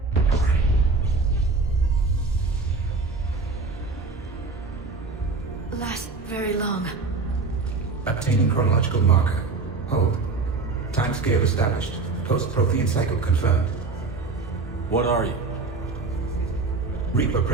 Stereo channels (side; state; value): left; quieter; 4.0 dB